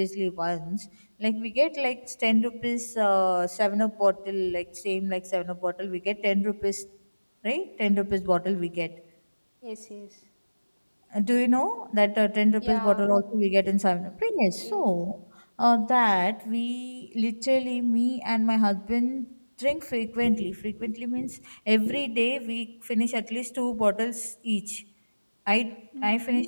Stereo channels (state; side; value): inverted; both; correlation -1.00